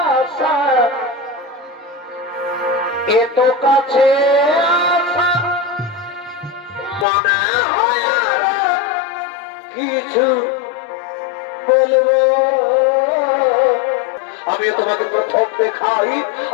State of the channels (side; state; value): right; drops out; at 7.1 s